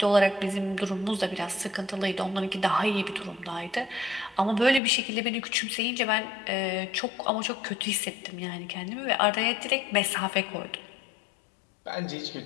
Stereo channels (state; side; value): drops out; right; at 4.8 s